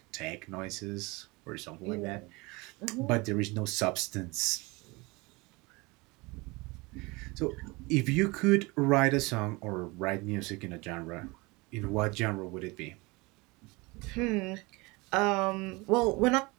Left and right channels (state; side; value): quieter; left; 24.9 dB